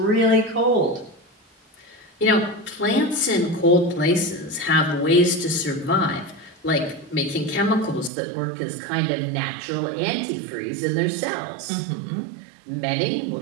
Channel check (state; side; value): drops out; left; at 8.1 s